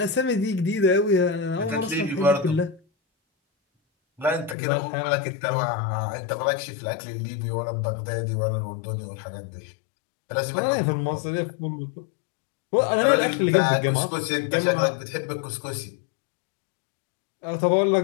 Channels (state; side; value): drops out; right; at 4.5 s